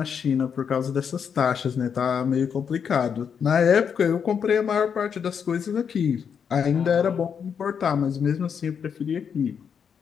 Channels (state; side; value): quieter; right; 7.1 dB